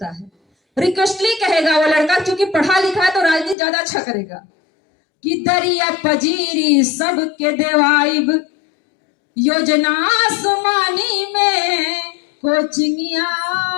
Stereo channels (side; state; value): right; drops out; at 3.6 s